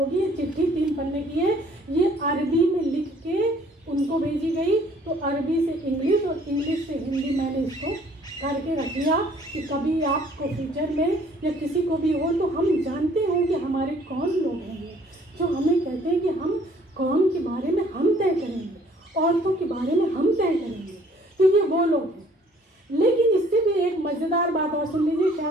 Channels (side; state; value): both; normal; correlation 0.58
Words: ये चिट्ठी 3 पन्ने की है, ये अरबी में लिख के उनको भेजी गई, तो अरबी से इंग्लिश और इंग्लिश से हिंदी मैंने इसको करके रख लिया कि कभी आपको फ्यूचर में या किसी को भी हो तो हम जानते होंगे हमारे कौन लोग हैं जो हमें कहते हैं कि हम कौम के बारे में हम तय करेंगे, औरतों के बारे में हम तय करेंगे, तो ये वो लोग हैं। लेकिन इससे भी एक मज़ेदार बात और सुन लीजिए,